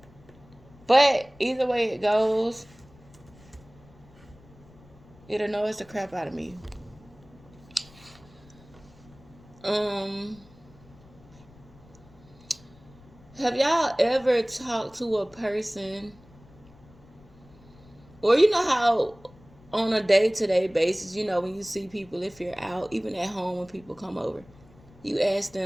But either way it goes, it annoys the crap out of me. Um, have y'all ever talked to a person, or you know how on a day-to-day basis, you know, when you see people, if you're out, even at home when people come over, you ask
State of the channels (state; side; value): noise; left; rumble, 24 dB below the sound